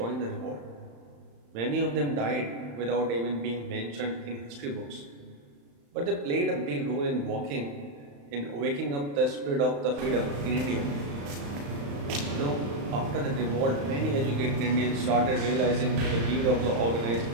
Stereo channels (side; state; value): left; late; 35 ms